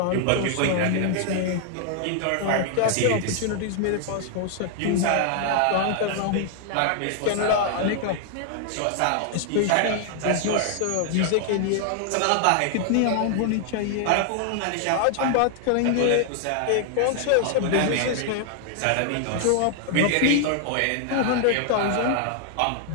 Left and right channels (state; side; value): different; both; correlation 0.00